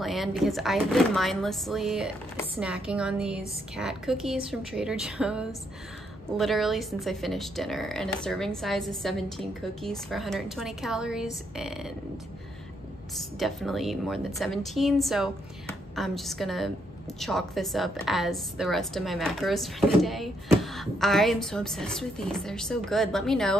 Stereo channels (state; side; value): normal; both; correlation 0.75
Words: because I've been mindlessly snacking on these cat cookies from Trader Joe's literally since I finished dinner, and a serving size is 17 cookies for 120 calories, and it's definitely more than 17, so I'm just gonna chalk this up as the rest of my macros for the day. I am so obsessed with these. They're so good. Let me